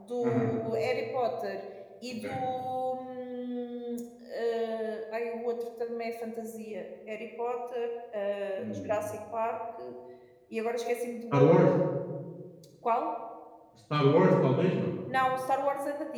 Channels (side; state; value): both; identical; correlation 1.00